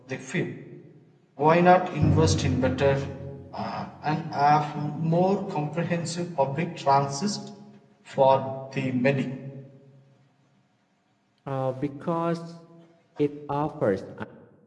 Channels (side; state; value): both; identical; correlation 1.00